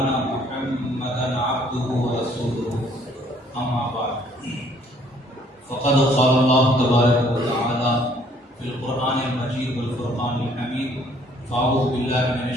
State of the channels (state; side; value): normal; both; correlation 0.61